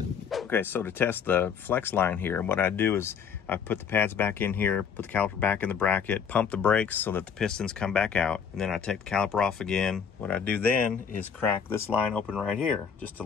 Okay, so to test the flex line here, what I do is I put the pads back in here, put the caliper back in the bracket, pump the brakes so that the pistons come back out, and then I take the caliper off again. What I do then is crack this line open right here, just to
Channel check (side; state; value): right; quieter; 7.0 dB